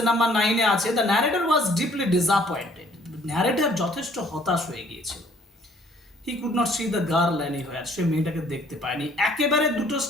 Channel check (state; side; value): normal; both; correlation 0.59